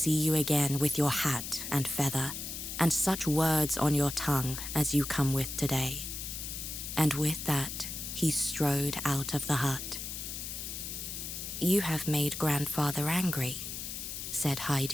you again with your hat and feather, and such words on your tongue as you come with today." And with that, he strode out of the hut. "You have made grandfather angry," said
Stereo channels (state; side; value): noise; left; hiss, 6 dB below the sound